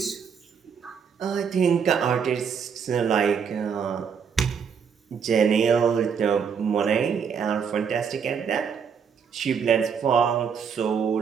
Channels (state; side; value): quieter; left; 6.7 dB